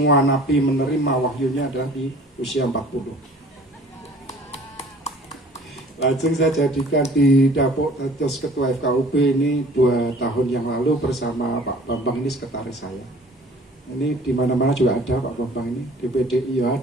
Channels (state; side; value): normal; both; correlation 0.50